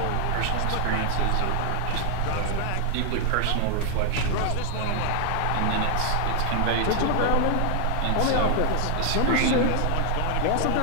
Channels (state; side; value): different; both; correlation 0.00